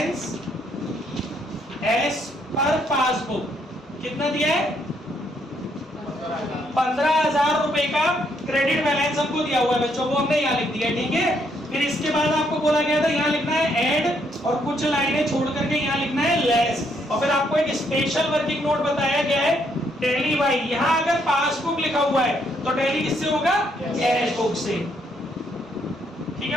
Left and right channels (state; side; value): normal; both; correlation 0.72